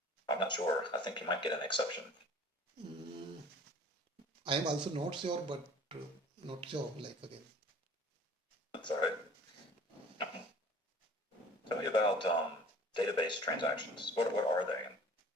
I'm not sure. I think you might get an exception. Mm, I am also not sure, but uh, not sure. Like again, That's all right. Tell me about database transactions. What are they and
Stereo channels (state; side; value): normal; both; correlation 0.48